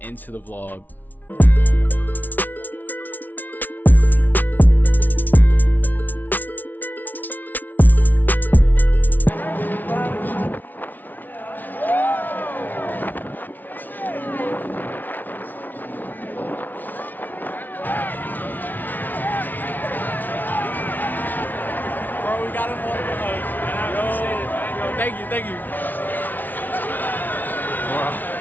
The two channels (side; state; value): right; late; 0.083 ms